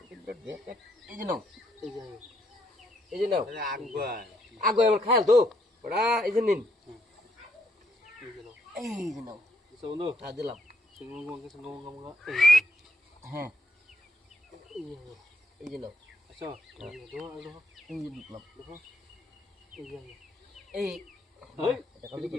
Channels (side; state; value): both; normal; correlation 0.73